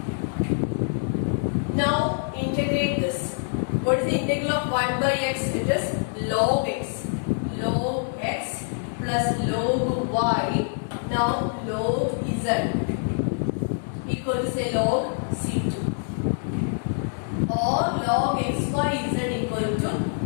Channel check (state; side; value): silent; right; digital silence